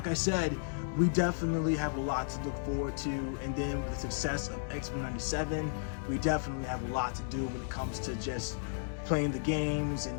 I said, we definitely have a lot to look forward to, and then with the success of X-Men 97, we definitely have a lot to do when it comes to just playing the games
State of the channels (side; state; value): right; silent; 55 dB below the other